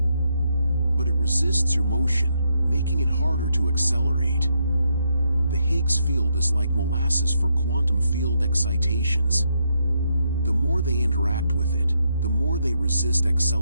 but it resists your motion, making it harder to accelerate. The Higgs field is like molasses for quantum field excitations. The more they interact with it, the more they resist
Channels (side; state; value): both; inverted; correlation -0.79